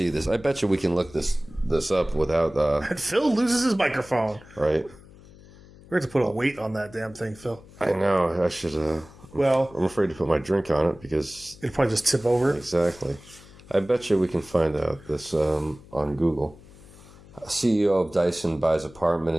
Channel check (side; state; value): left; noise; hum, 22 dB below the sound